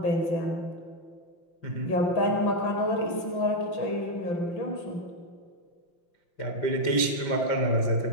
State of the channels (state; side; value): late; right; 5.8 ms